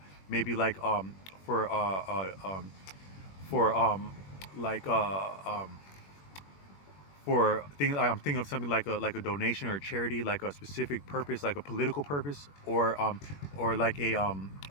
maybe like for for like for things. I'm thinking of something like a donation or a charity, like a specific purpose, like a political purpose, or like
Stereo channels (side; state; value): right; late; 21 ms